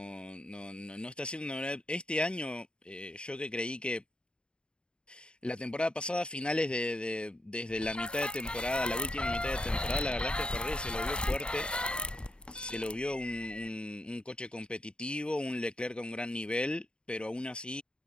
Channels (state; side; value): late; right; 0.052 ms